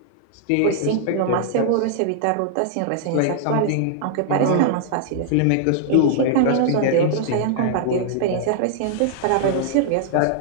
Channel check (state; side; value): different; both; correlation -0.01